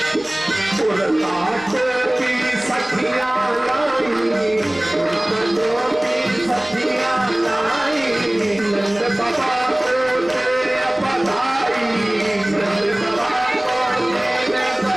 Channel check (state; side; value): noise; right; rumble, 26 dB below the sound